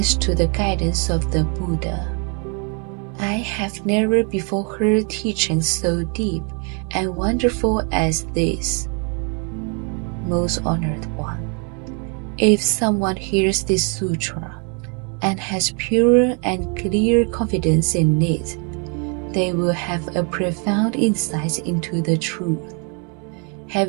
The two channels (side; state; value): left; quieter; 36.9 dB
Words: to the guidance of the Buddha, I have never before heard teaching so deep and wonderful as this. Most honored one, if someone hears this sutra and has pure and clear confidence in it, they will have a profound insight into the truth.